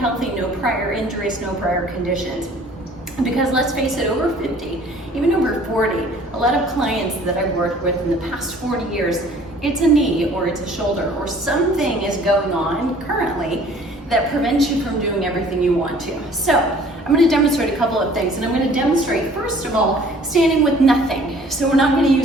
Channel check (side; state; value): both; normal; correlation 0.53